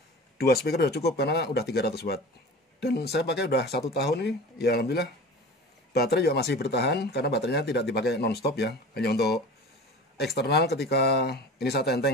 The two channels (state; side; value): normal; both; correlation 0.36